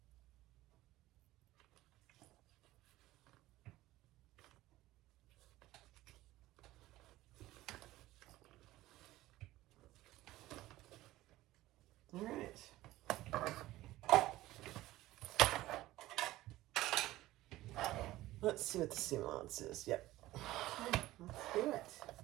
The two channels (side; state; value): left; quieter; 16.6 dB